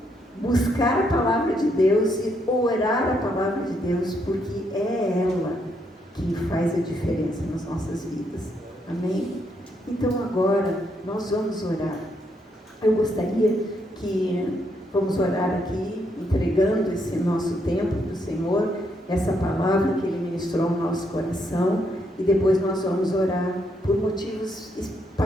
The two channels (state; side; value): normal; both; correlation 0.76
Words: buscar a palavra de Deus e orar a palavra de Deus, porque é ela que faz a diferença nas nossas vidas. Amém? Então, agora, nós vamos orar. Eu gostaria que vamos orar aqui, entregando esse nosso tempo para o Senhor, essa palavra que Ele ministrou no nosso coração, e depois nós vamos orar por motivos